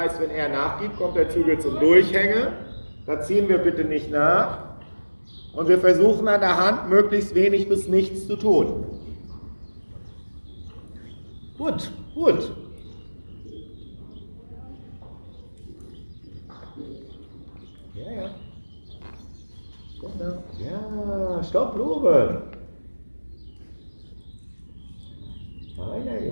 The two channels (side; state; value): both; inverted; correlation -1.00